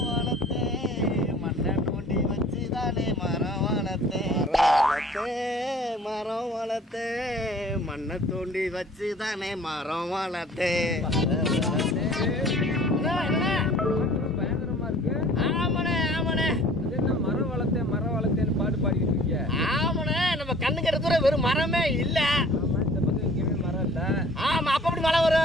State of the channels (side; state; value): both; normal; correlation 0.50